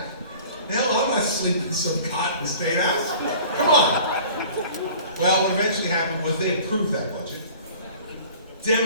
Hell, I'm not sleeping in some cot in the State House. Come on. Well, what eventually happened was they approved that budget.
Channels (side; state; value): both; inverted; correlation -0.46